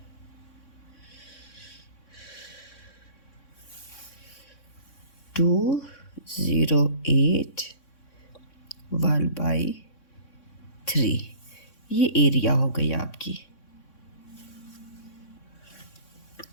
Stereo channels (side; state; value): right; late; 3.6 ms